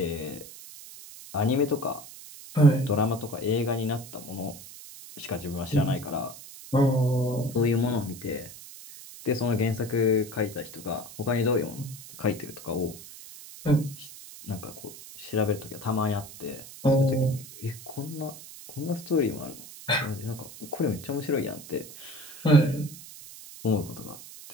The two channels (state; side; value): noise; right; hiss, 15 dB below the sound